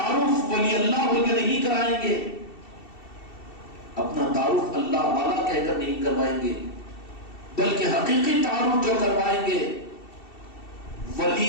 ولی اللہ بول کے نہیں کرائیں گے، اپنا تعارف اللہ والا کہہ کر نہیں کروائیں گے، بلکہ حقیقی تعارف جو کروائیں گے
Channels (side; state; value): right; late; 2.7 ms